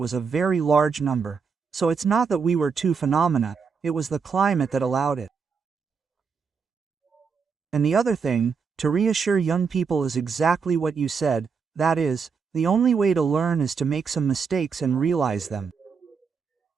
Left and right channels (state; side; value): quieter; left; 5.7 dB